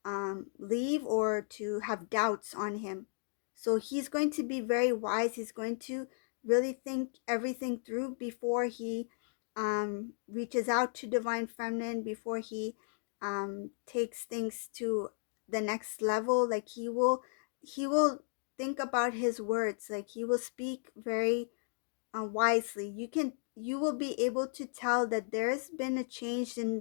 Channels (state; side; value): silent; right; digital silence